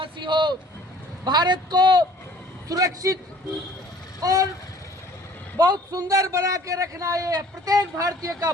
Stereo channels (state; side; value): normal; both; correlation 0.53